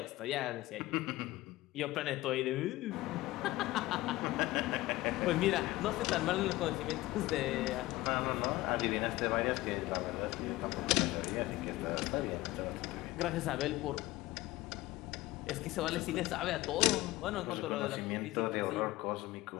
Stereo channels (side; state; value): right; quieter; 18.2 dB